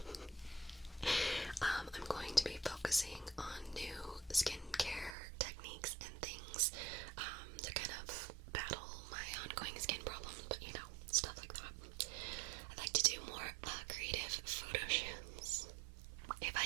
I'm going to be focusing on new skincare techniques and things to kind of battle my ongoing skin problems, but you know, stuff like that. I'd like to do more creative photo shoots. If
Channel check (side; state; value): left; drops out; at 5.2 s